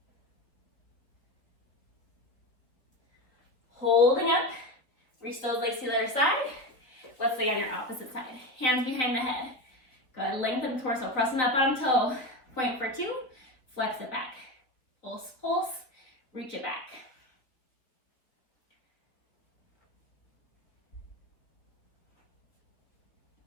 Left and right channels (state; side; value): late; right; 3.7 ms